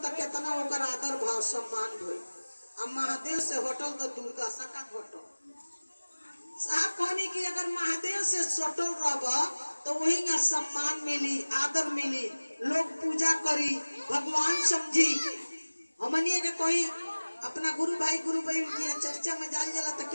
तो कितना ओकर आदर भाव सम्मान होई। अब महादेव से होटल तो दुर्दशा का घटल। साहब कहनी कि अगर महादेव से सटल रहब तो वही ना सम्मान मिली आदर मिली लोग पूजा करी भगवान समझी। हमनिए के कोई अपना गुरु भाई गुरु बहन की चर्चा में जाल जाला तो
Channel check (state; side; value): inverted; both; correlation -1.00